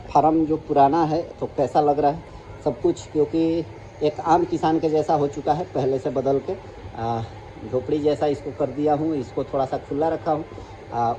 फार्म जो पुराना है, तो कैसा लग रहा है सब कुछ, क्योंकि एक आम किसान के जैसा हो चुका है, पहले से बदल के झोपड़ी जैसा इसको कर दिया हूँ। इसको थोड़ा सा खुला रखा हूँ,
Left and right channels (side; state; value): both; identical; correlation 1.00